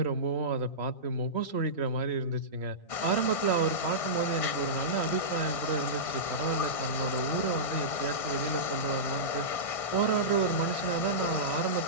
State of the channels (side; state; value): right; late; 1.6 ms